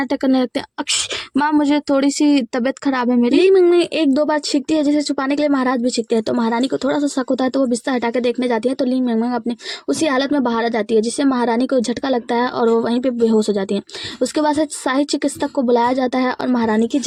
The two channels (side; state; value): both; identical; correlation 1.00